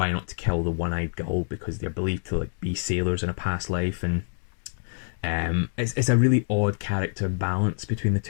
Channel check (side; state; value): right; silent; digital silence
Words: not to kill the one-eyed gull, because they're believed to be sailors in a past life. And it's a really odd character balance between the